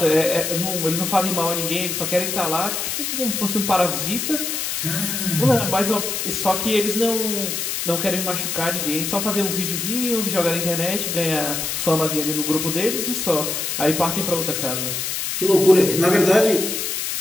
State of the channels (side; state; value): left; noise; hiss, 2 dB below the sound